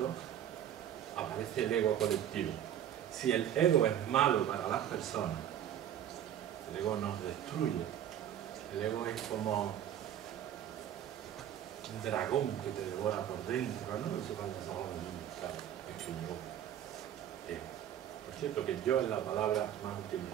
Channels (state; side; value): quieter; left; 10.4 dB